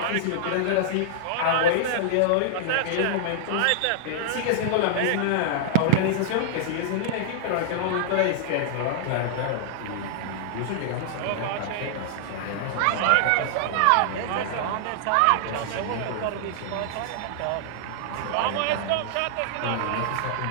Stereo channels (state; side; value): different; both; correlation -0.01